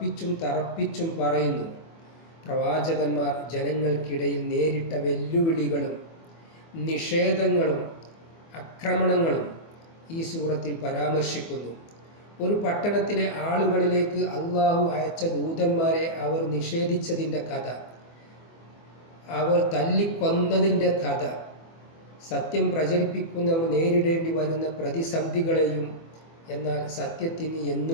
തറപ്പിച്ചും പറയുന്നു. പ്രവാചകന്മാർ ജനങ്ങൾക്കിടയിൽ നേരിട്ട വെല്ലുവിളികളും നിഷേധങ്ങളും ആക്രമണങ്ങളും ഈ സൂറത്തിൽ പരാമർശിക്കുന്നു. ഒരു പട്ടണത്തിലെ ആളുകളിലേക്ക് അള്ളാഹു അയച്ച ദൂതന്മാരെ അവർ നിഷേധിച്ചതിൻ്റെ കഥ, അവർ തല്ലിക്കൊന്നതിൻ്റെ കഥ, സത്യം പ്രചരിപ്പിക്കുന്നവർ നേരിടേണ്ടി വരുന്ന പ്രതിസന്ധികളെയും എന്നാൽ സത്യത്തിന്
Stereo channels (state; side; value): late; right; 24 ms